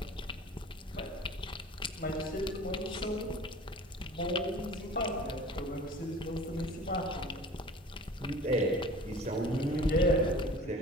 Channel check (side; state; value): both; normal; correlation 0.43